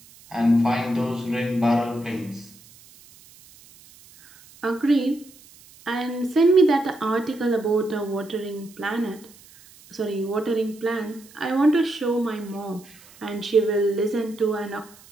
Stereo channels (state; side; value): noise; right; hiss, 24 dB below the sound